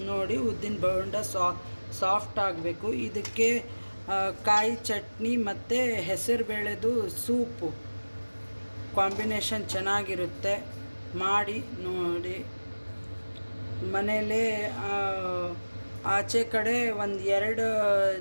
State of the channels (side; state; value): both; inverted; correlation -1.00